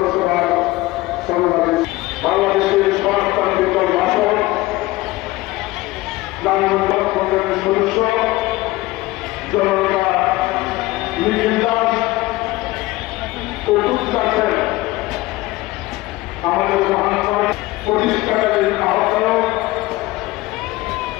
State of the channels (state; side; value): quieter; right; 19.2 dB